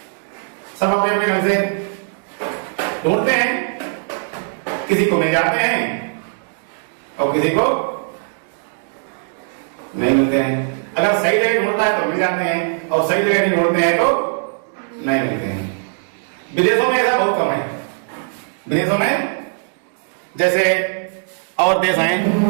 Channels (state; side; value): silent; left; digital silence